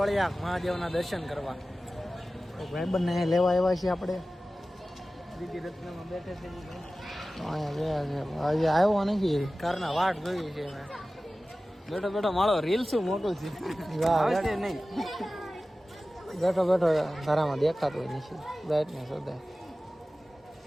મહાદેવના દર્શન કરવા. ભાઈબંધને લેવા આવ્યા છીએ આપણે. દીદી રત્નમાં બેઠે છે અહીંયા આજે આવ્યો નથી. કારના વાટ જોઈ છે મેં. બેઠો બેઠો મારો રીલ શું મોટું છે નહીં. બેઠો બેઠો ઘરામાં દેખાતો હોય નથી. બ્રાઇટનેસ વધારે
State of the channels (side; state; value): both; normal; correlation 0.96